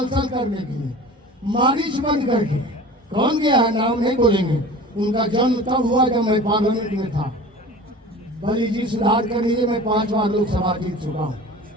करने के लिए, मारिच बन करके। कौन गया है नाम नहीं बोलेंगे। उनका जन्म तब हुआ जब मैं पार्लियामेंट में था। बलि जी सुधार कर लीजिए, मैं 5 बार लोकसभा जीत चुका हूँ।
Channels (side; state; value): both; normal; correlation 0.39